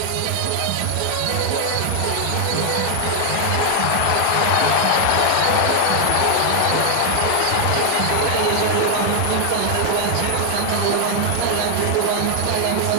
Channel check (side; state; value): both; different; correlation 0.00